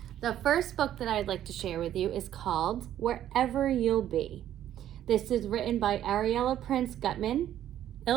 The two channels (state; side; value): quieter; left; 11.6 dB